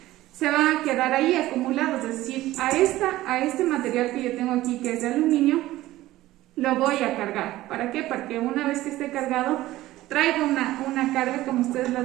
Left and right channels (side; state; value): left; quieter; 16.2 dB